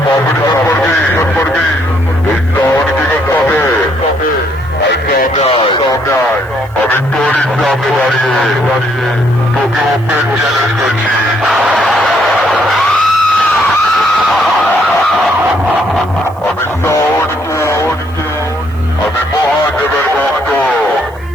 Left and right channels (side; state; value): right; noise; hiss, 29 dB below the sound